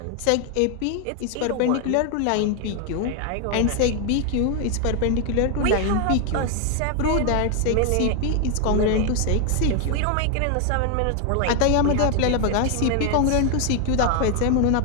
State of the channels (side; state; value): both; different; correlation 0.01